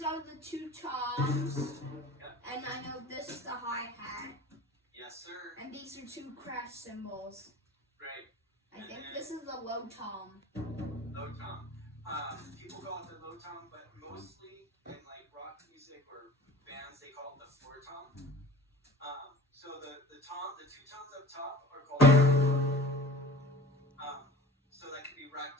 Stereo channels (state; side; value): normal; both; correlation 0.42